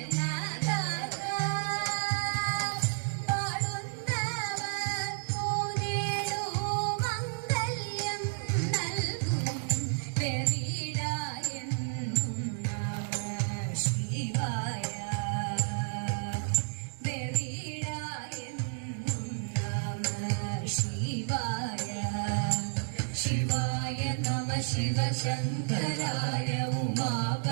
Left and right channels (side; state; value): left; silent; digital silence